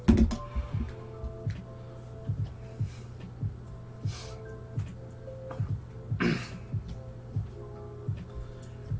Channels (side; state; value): both; identical; correlation 1.00